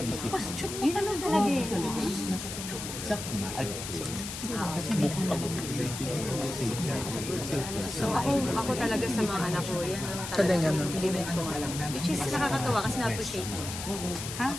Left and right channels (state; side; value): noise; left; hiss, 7 dB below the sound